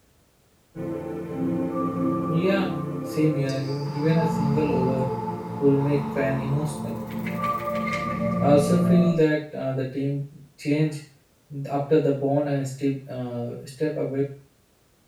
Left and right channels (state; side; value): identical; both; correlation 1.00